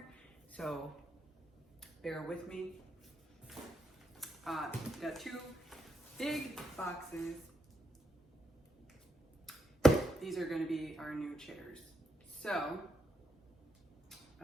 so bear with me. Got two big boxes. These are going to be our new chairs. So,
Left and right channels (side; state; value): both; normal; correlation 0.82